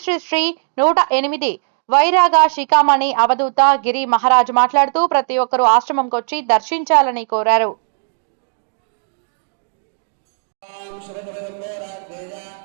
శ్రీ శ్రీ 108 వైరాగ శిఖామణి అవధూత గిరి మహారాజ్ మాట్లాడుతూ ప్రతి ఒక్కరూ ఆశ్రమంకి వచ్చి దర్శించాలని కోరారు.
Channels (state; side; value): silent; left; 68 dB below the other